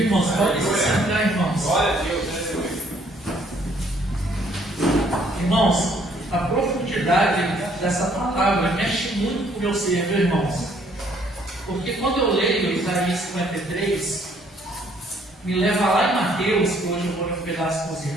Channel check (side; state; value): both; normal; correlation 0.64